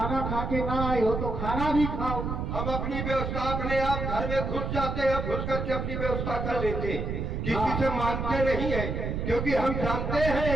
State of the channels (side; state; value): right; noise; rumble, 3 dB below the sound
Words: खा के ना आए हो तो खाना भी खाओ। हम अपनी व्यवस्था अपने आप घर में घुस जाते हैं, घुस करके अपनी व्यवस्था कर लेते हैं, किसी से मांगते नहीं है, क्योंकि हम जानते